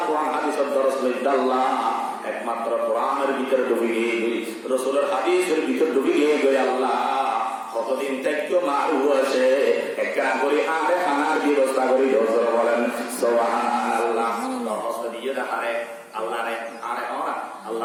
কোরআন হাদিসের দরস লইতে আল্লাহ একমাত্র কোরআনের ভিতরে ডুবে গিয়ে রাসূলের হাদিসের ভিতরে ডুবে গিয়ে আল্লাহ কতদিন থেকে মারু আছে একটা করে আরে খানার ব্যবস্থা করি দরজা বলেন সুবহানাল্লাহ। দরস দিয়ে দেখারে আল্লাহ রে আরে ওরা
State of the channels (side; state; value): both; identical; correlation 1.00